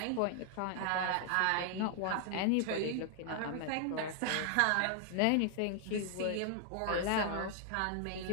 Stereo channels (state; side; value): different; both; correlation 0.00